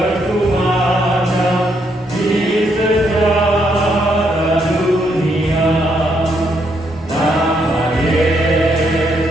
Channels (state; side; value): normal; both; correlation 0.75